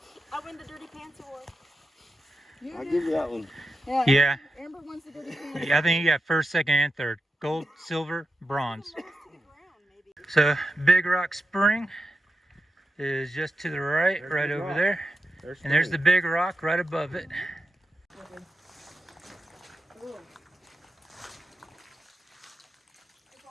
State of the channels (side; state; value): both; normal; correlation 0.90